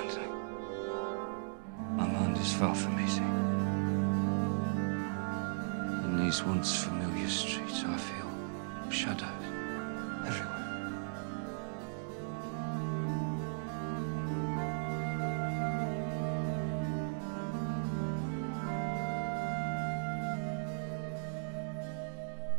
My mind is far from easy. In these once familiar streets, I feel shadows everywhere.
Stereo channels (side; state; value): left; silent; digital silence